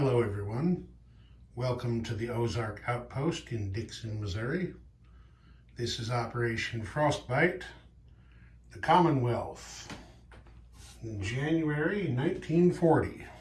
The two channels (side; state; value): both; identical; correlation 1.00